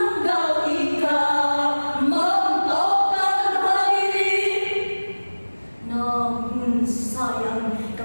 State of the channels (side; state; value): both; inverted; correlation -1.00